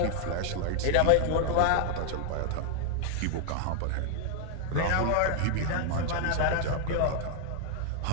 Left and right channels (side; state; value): both; different; correlation 0.00